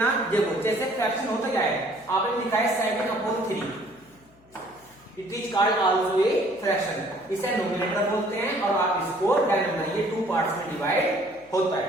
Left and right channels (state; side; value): noise; left; hum, 29 dB below the sound